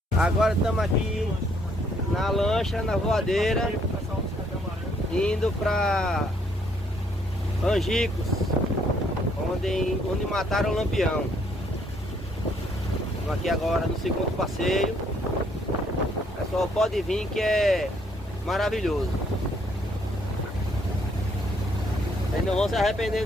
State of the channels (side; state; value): both; normal; correlation 0.68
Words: Agora estamos aqui na lancha, na voadeira, indo para Angicos, onde mataram o Lampião. Estamos aqui agora no segundo passeio. Pessoal, pode vir que é maravilhoso. Vocês não vão se arrepender